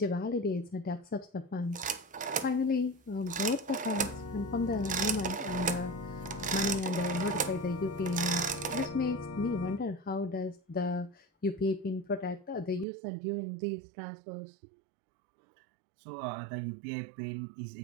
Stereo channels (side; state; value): left; drops out; at 12.9 s